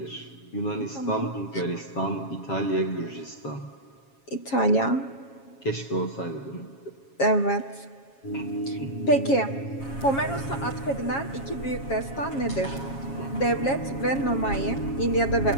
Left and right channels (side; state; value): right; late; 7.3 ms